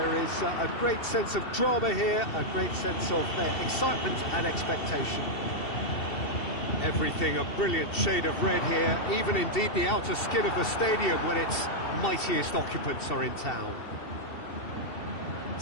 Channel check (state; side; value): late; right; 2.7 ms